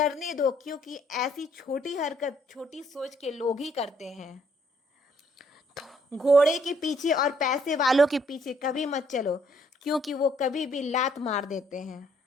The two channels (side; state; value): both; normal; correlation 0.67